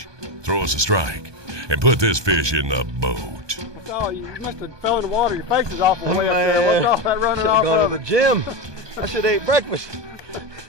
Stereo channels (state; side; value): late; left; 1.2 ms